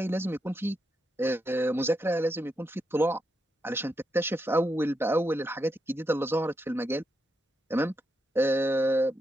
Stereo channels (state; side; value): normal; both; correlation 0.83